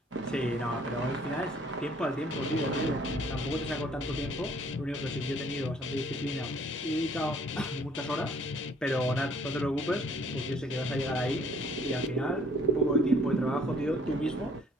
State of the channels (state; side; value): normal; both; correlation 0.59